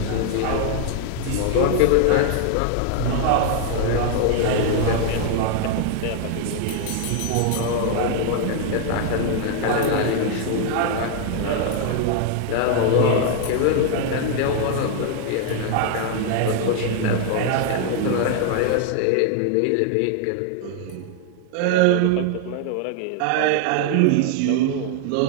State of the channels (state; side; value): different; both; correlation 0.00